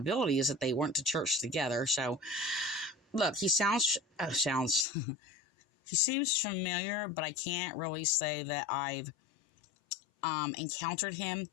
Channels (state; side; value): drops out; right; at 4.9 s